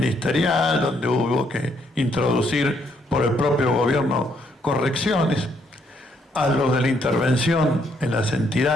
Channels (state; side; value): normal; both; correlation 0.72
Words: donde hubo que introducir por el propio gobierno correcciones, a los de la intervención en las